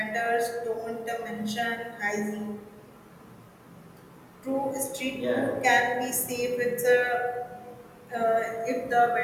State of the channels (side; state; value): both; identical; correlation 1.00